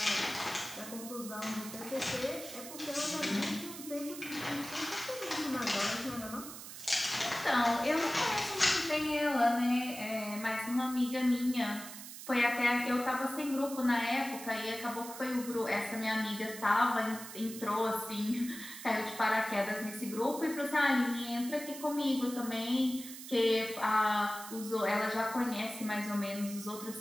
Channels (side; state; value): right; noise; hiss, 12 dB below the sound